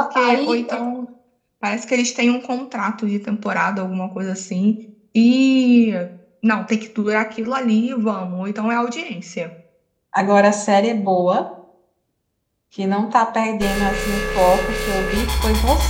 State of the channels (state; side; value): identical; both; correlation 1.00